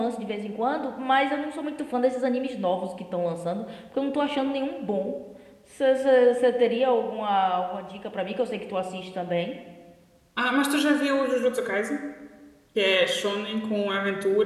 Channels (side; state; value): both; identical; correlation 1.00